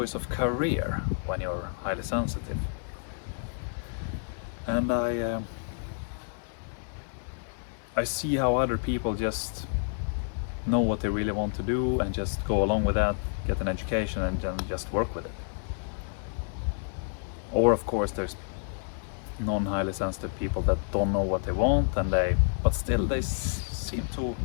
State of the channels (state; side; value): silent; right; digital silence